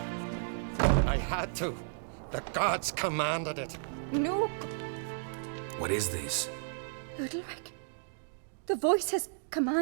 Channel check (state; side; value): silent; left; digital silence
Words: night was... I had to. The gods commanded it. No, What is this? Udalric. The voice has